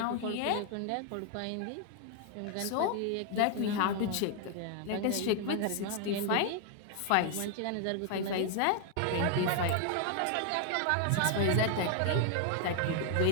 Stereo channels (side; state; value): both; different; correlation 0.00